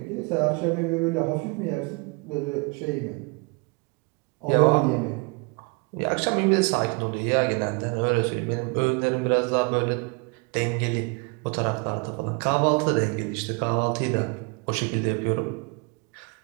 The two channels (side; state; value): left; quieter; 31.5 dB